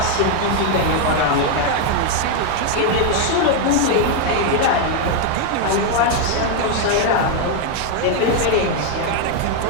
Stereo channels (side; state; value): both; different; correlation 0.01